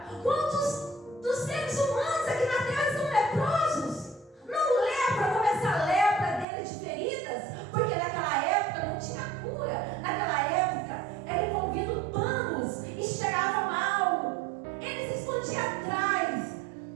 Quantos dos seres humanos aqui na terra estão leprosos? Não lepra como essa lepra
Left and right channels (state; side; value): drops out; left; at 6.5 s